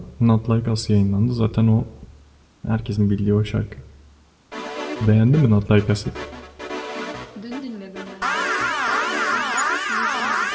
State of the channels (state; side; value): identical; both; correlation 1.00